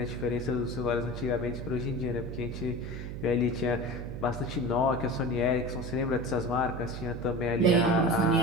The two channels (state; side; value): noise; right; hum, 7 dB below the sound